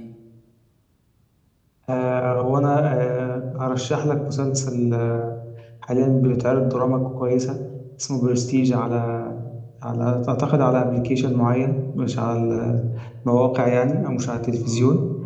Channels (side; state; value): both; identical; correlation 1.00